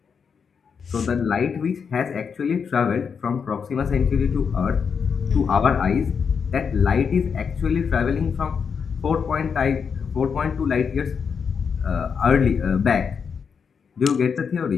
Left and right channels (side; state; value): right; quieter; 6.3 dB